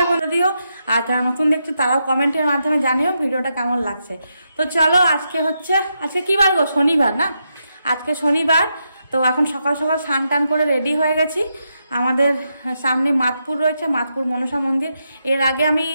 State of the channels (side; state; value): both; inverted; correlation -0.83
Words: বলে দিও, আর যারা নতুন দেখছো তারাও কমেন্টের মাধ্যমে জানিও ভিডিওটা কেমন লাগছে। তো চলো, আজকে কি বার গো? শনিবার না? আজকে শনিবার। তো এখন সকাল সকাল স্নান টান করে রেডি হয়ে গেছি। আমাদের সামনে মাতপুর রয়েছে, মাতপুর মনসা মন্দির। এর আগে আমি